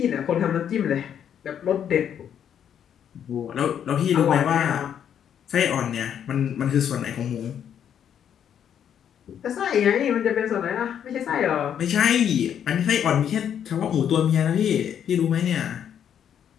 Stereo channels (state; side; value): quieter; right; 9.0 dB